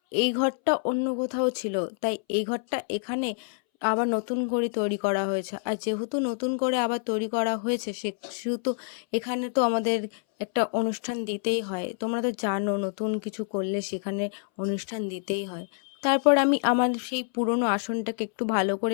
এই ঘরটা অন্য কোথাও ছিল, তাই এই ঘরটা এখানে আবার নতুন করে তৈরি করা হয়েছে। আর যেহেতু নতুন করে আবার তৈরি করা হয়েছে, সেহেতু এখানে তো আমাদের একটা অনুষ্ঠান দিতেই হয়। তোমরা তো জানো, নতুন কিছু করলে সেখানে অনুষ্ঠান দিতেই হয়। তারপর আমি আমার সেই পুরনো আসনটাকে একটু ভালো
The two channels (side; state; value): right; silent; 60 dB below the other